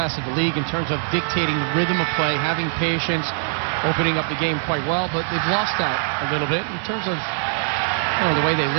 of the league in terms of dictating the rhythm of play, having patience, opening up the game quite well, but they've lost that a little bit in terms of the way they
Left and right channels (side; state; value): left; silent; digital silence